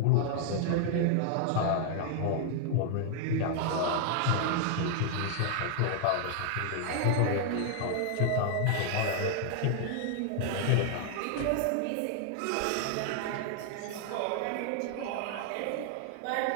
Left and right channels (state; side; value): different; both; correlation 0.00